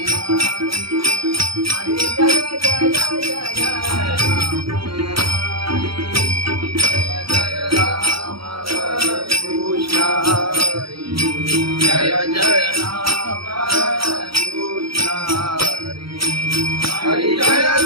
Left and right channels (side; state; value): left; late; 0.75 ms